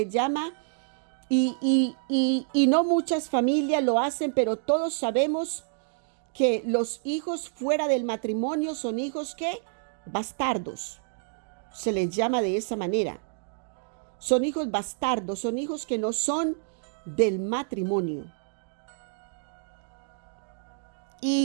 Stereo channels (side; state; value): left; silent; digital silence